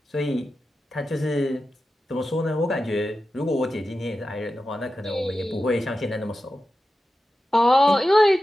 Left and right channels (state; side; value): normal; both; correlation 0.92